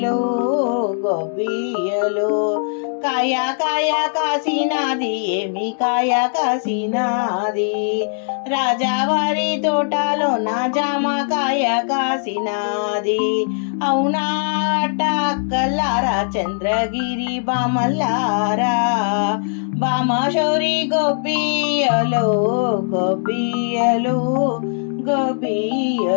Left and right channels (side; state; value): right; silent; digital silence